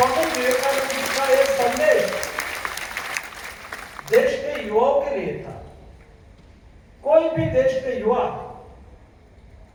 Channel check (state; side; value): identical; both; correlation 1.00